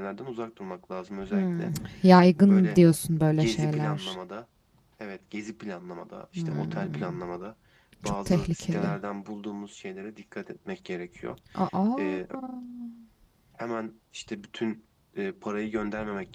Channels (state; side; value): identical; both; correlation 1.00